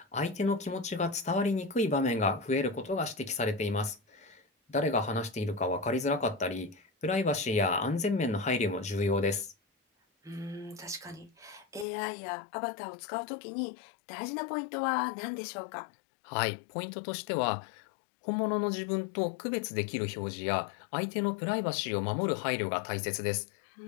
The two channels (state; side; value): drops out; right; at 11.9 s